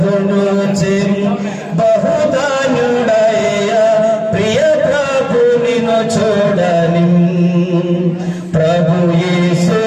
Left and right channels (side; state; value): both; identical; correlation 1.00